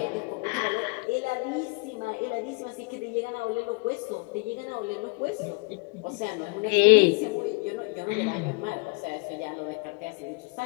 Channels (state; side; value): quieter; right; 29.1 dB